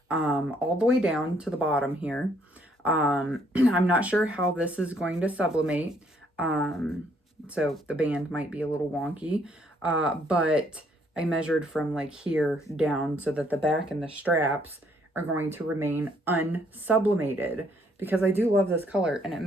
all the way down to the bottom here. I'm not sure how this is going to sublimate. So the band might be a little wonky, but I measured from like here down so that the back and the straps are going to remain unsublimated because I do love this color and it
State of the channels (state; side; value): normal; both; correlation 0.67